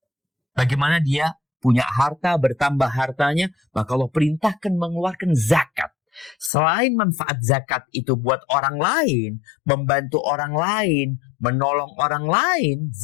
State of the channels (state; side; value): drops out; right; at 6.5 s